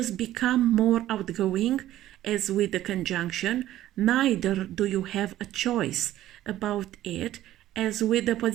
become more outgoing, as with the conjunction, neither do you have a choice about it, as with the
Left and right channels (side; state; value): left; quieter; 13.7 dB